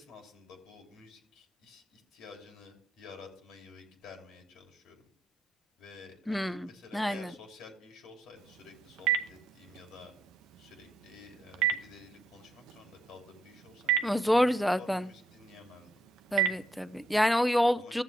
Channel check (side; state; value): both; normal; correlation 0.74